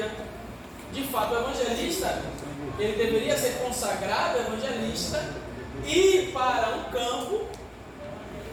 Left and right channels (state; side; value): identical; both; correlation 1.00